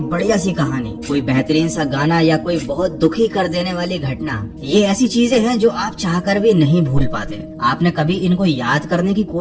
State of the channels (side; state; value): both; identical; correlation 1.00